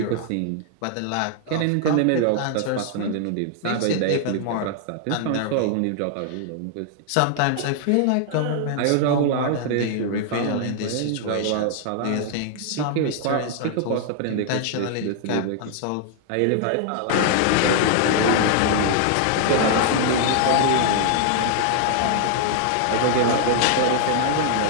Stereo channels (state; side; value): different; both; correlation 0.00